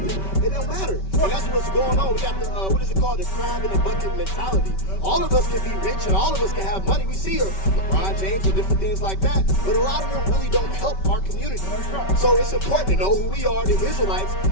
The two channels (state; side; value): late; right; 5.2 ms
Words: it don't matter. And that's what's going on. We got the, what is it called? The crab in the bucket mentality. All of us can be rich and all of us can have money. We see LeBron James and different things like that, but a lot of them really don't help our community. So it's important to know who we are, the Israelites,